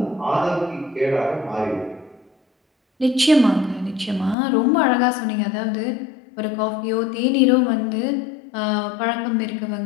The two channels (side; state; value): right; drops out; at 4.4 s